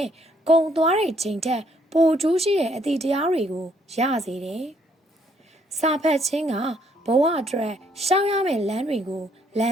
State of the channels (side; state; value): both; normal; correlation 0.68